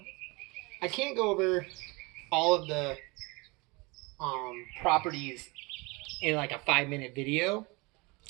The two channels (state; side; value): quieter; left; 26.4 dB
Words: I can't go over all of the properties in like a 5-minute video.